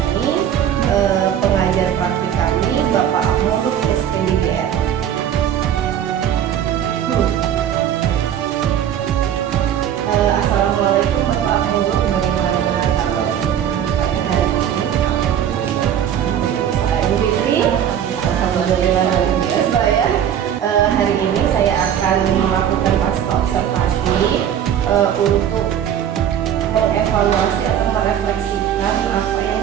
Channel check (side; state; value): left; quieter; 9.7 dB